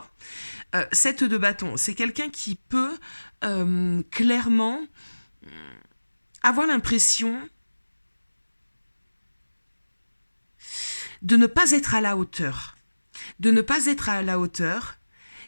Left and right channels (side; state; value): both; inverted; correlation -1.00